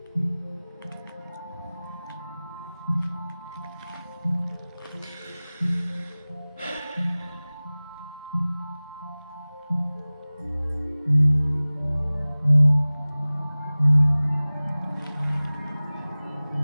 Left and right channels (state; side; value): inverted; both; correlation -0.99